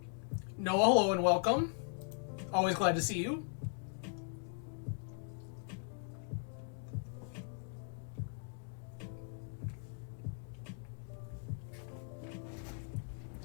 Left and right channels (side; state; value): right; silent; 52 dB below the other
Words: Noah, hello and welcome. Always glad to see you.